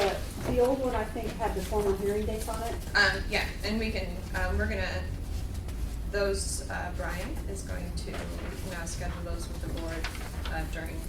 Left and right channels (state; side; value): identical; both; correlation 1.00